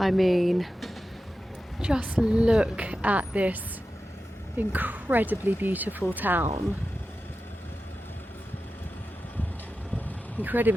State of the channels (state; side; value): normal; both; correlation 0.92